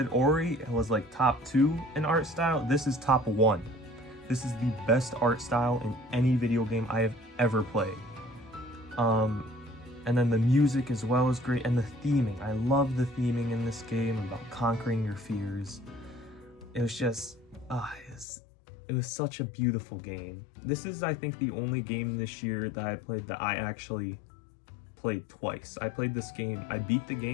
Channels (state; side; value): drops out; right; at 18.2 s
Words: Ori was like top 2 in art style, this is top 1. This is the best art style in any video game I have ever played. And then the music as well is great, and the theming. I love the theming in this game about conquering your fears. It was just, it was such a beautiful game. This is, I think, the only game this year that I played that I actually played twice. I played this game, I beat the